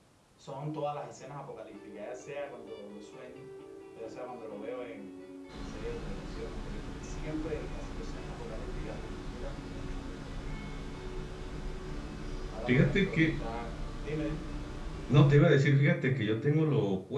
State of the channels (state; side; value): identical; both; correlation 1.00